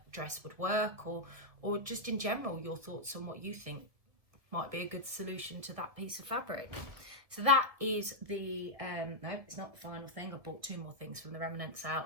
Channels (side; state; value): left; late; 1.8 ms